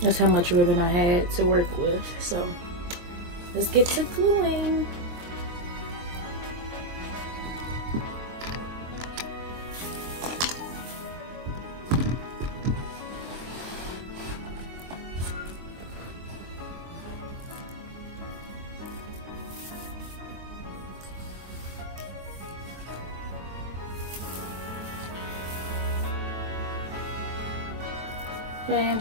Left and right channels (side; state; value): left; late; 23 ms